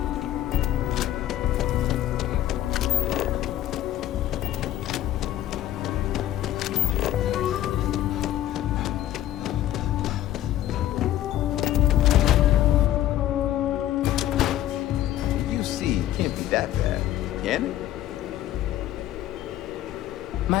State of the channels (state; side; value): quieter; right; 13.0 dB